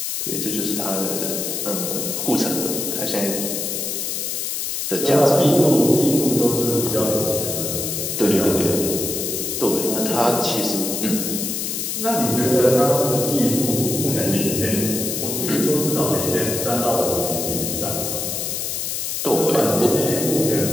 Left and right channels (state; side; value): noise; left; hiss, 2 dB below the sound